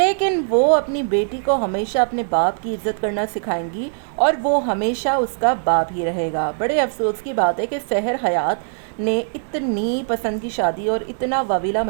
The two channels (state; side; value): silent; left; 65 dB below the other